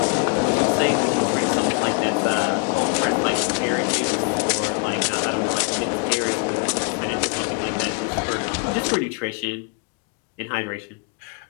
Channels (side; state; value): right; quieter; 32.8 dB